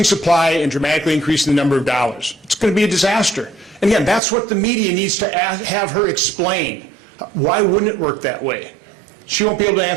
supply and dramatically increasing the number of dollars. It's going to be a disaster. And again, that's what the media needs to have her explain. Why wouldn't it work that way? She won't be able to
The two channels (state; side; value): drops out; left; at 4.2 s